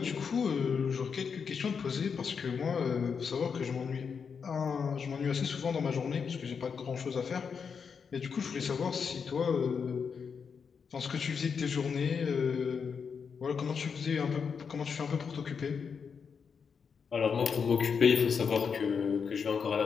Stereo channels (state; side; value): quieter; right; 6.2 dB